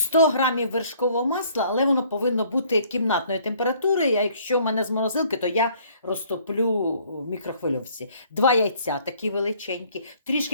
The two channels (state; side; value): inverted; both; correlation -0.59